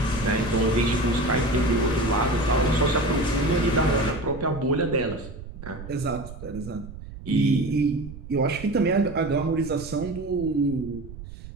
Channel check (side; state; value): right; noise; rumble, 13 dB below the sound